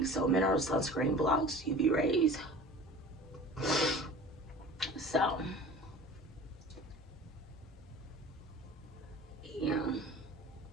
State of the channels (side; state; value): both; normal; correlation 0.40